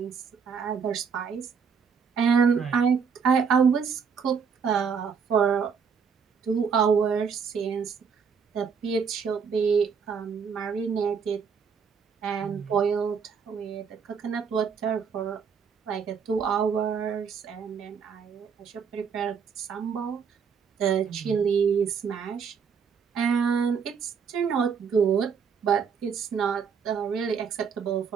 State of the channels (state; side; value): quieter; left; 6.4 dB